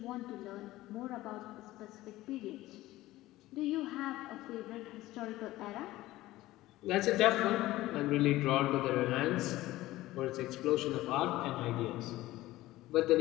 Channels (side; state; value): right; quieter; 16.9 dB